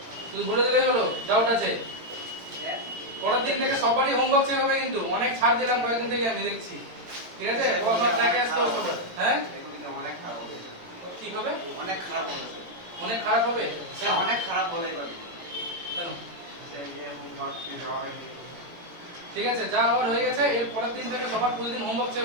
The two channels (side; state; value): left; late; 17 ms